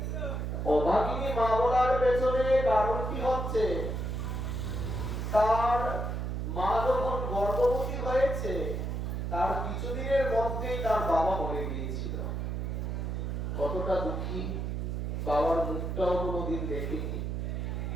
অভাগিনী মা বলার পেছনে কারণটি হচ্ছে, তার মা যখন গর্ভবতী হয়েছে, তার কিছুদিনের মধ্যেই তার বাবা মরে গিয়েছিল। কতটা দুঃখী, বাবার মুখটাও কোনোদিন দেখেনি।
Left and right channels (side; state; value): right; noise; hum, 2 dB below the sound